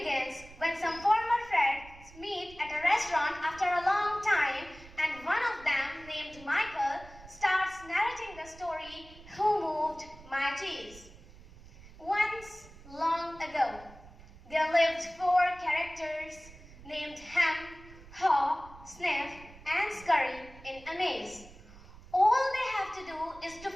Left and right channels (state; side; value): noise; right; rumble, 20 dB below the sound